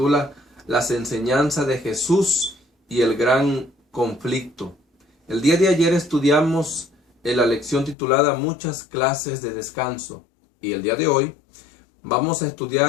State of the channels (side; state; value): right; drops out; at 8.0 s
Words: Las enseñanzas de Jesús y el gran conflicto. El día de ayer estudiamos la lección titulada Muchas clases de descanso. Y el día de hoy vamos a